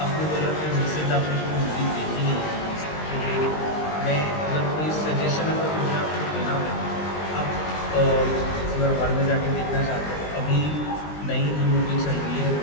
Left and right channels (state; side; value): late; right; 20 ms